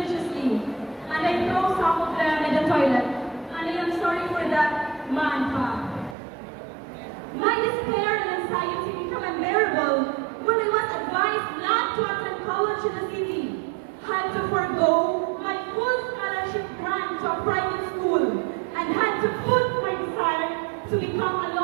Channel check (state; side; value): drops out; left; at 6.2 s